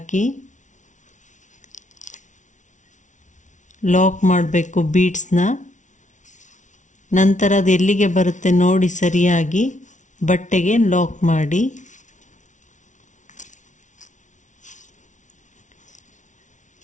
ಲಾಕ್ ಮಾಡಬೇಕು ಬೀಡ್ಸ್ನ. ನಂತರ ಅದು ಎಲ್ಲಿಗೆ ಬರುತ್ತೆ ನೋಡಿ ಸರಿಯಾಗಿ ಬಟ್ಟೆಗೆ ಲಾಕ್ ಮಾಡಿ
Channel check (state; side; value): late; right; 0.36 ms